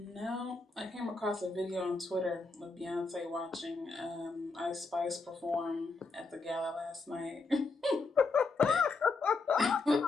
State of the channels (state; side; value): quieter; right; 3.9 dB